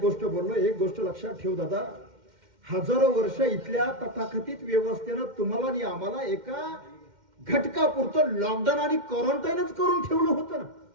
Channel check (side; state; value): left; late; 2.1 ms